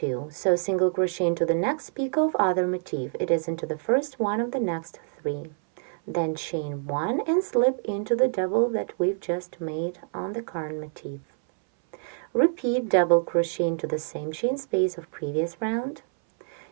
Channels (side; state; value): left; silent; 60 dB below the other